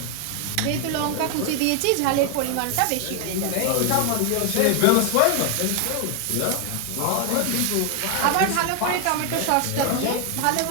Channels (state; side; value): different; both; correlation 0.00